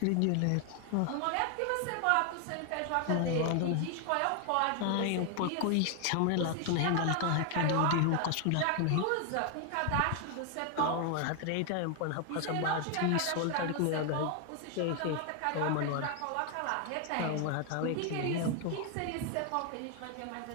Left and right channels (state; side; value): different; both; correlation 0.00